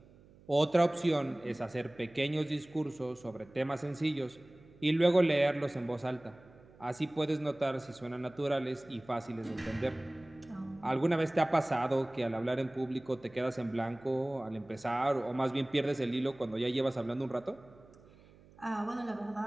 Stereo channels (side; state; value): right; noise; hum, 25 dB below the sound